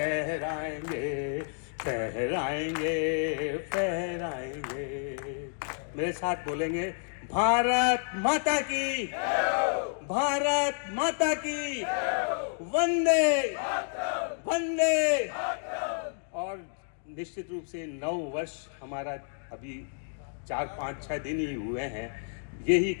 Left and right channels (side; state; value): right; silent; digital silence